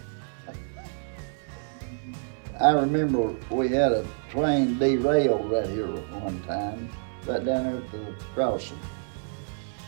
I remember we had a train derailed right here one time, right down there at the crossing.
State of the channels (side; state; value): left; silent; 60 dB below the other